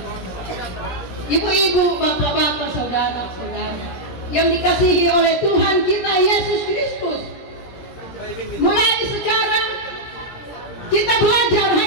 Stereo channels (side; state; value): right; late; 17 ms